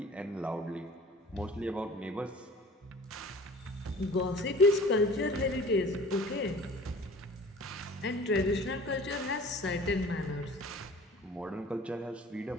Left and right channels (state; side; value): normal; both; correlation 0.45